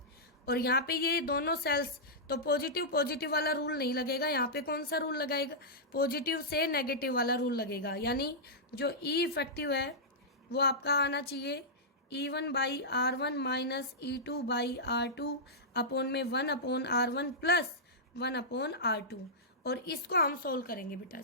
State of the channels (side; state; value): both; normal; correlation -0.12